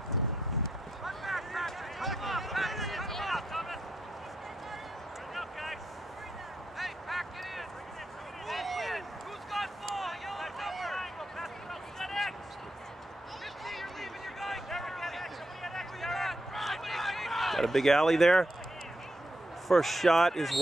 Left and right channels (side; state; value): both; normal; correlation 0.82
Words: Got a big alley there. First shot is